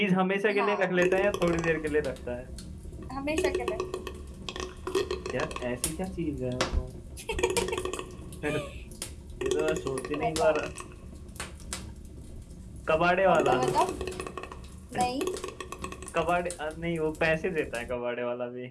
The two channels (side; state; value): both; identical; correlation 1.00